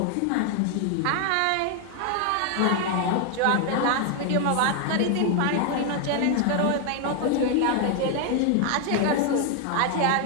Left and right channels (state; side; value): different; both; correlation 0.00